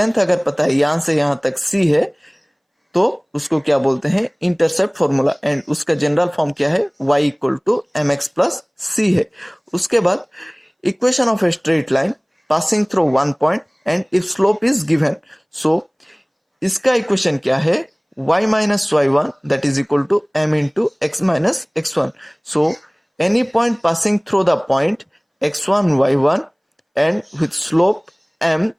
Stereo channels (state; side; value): identical; both; correlation 1.00